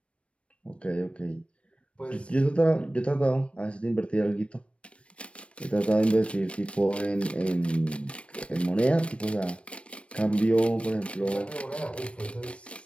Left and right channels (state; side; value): late; right; 0.061 ms